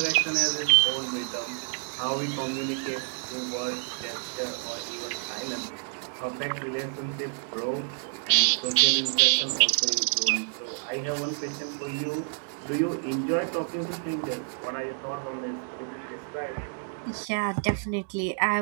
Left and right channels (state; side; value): silent; left; 59 dB below the other